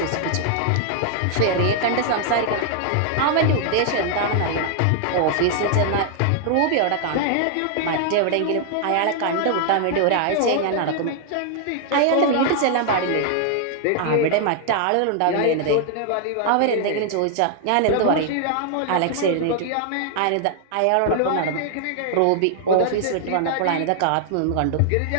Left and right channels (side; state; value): both; different; correlation 0.00